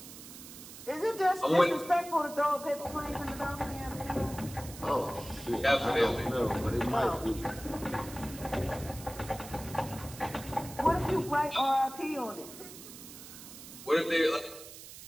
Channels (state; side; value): noise; right; hiss, 15 dB below the sound